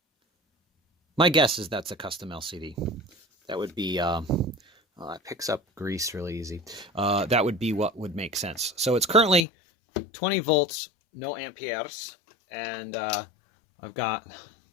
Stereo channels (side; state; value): right; drops out; at 9.5 s